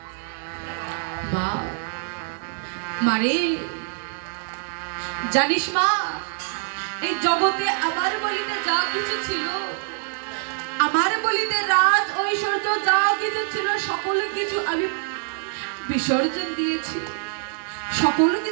মা, মারে, জানিস মা, এই জগতে আমার বলিতে যা কিছু ছিল, আমার বলিতে রাজ ঐশ্বর্য যা কিছু ছিল সকল কিছু আমি বিসর্জন দিয়েছি। সকল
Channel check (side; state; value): left; silent; digital silence